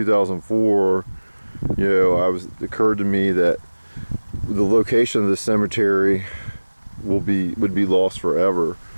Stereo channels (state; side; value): inverted; both; correlation -1.00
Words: it occurred to me that the location of the cemetery would be lost forever.